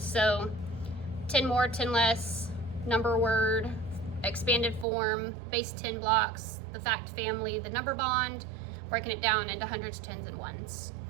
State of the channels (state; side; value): drops out; left; at 4.9 s